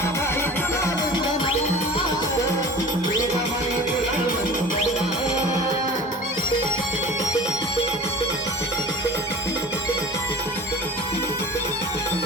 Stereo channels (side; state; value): both; normal; correlation 0.39